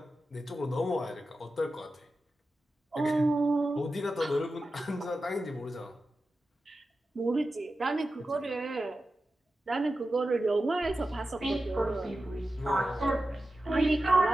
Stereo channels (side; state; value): both; normal; correlation 0.92